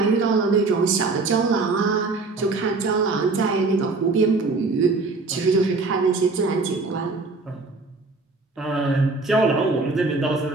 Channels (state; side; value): quieter; left; 3.7 dB